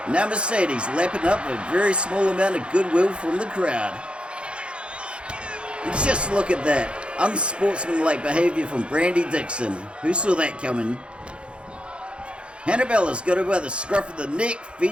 Now Mercedes lapping up a very small amount of goodwill from the crowd. And just look at that. Unsportsmanlike behavior from Brandy Dixon. Who saw that coming? Hannabella's got her by the scruff of the neck,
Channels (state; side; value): late; left; 0.057 ms